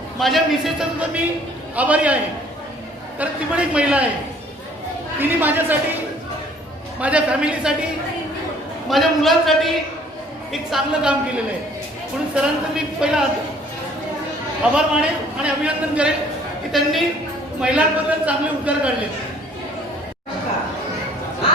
माझ्या मिसेसचा सुद्धा मी आभारी आहे, कारण ती पण एक महिला आहे. तिने माझ्यासाठी, माझ्या फॅमिलीसाठी, माझ्या मुलांसाठी एक चांगलं काम केलेलं आहे. म्हणून सरांचं मी पहिला आभार मानेन आणि अभिनंदन करेन की त्यांनी महिलांबद्दल चांगले उद्गार काढले.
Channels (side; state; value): both; normal; correlation 0.57